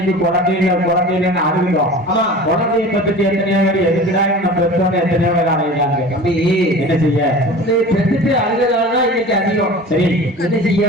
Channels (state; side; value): normal; both; correlation 0.38